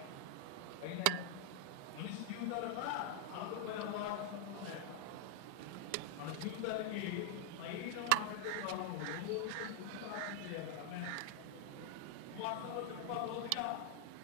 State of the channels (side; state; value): both; different; correlation 0.00